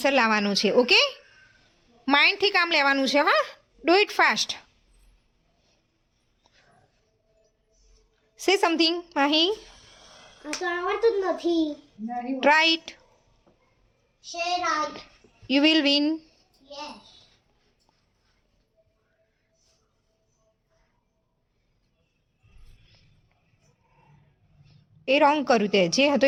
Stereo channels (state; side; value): identical; both; correlation 1.00